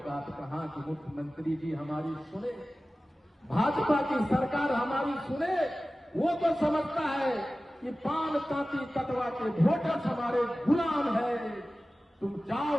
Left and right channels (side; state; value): both; normal; correlation 0.96